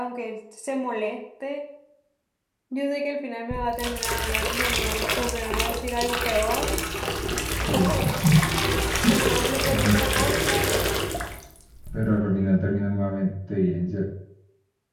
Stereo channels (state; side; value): identical; both; correlation 1.00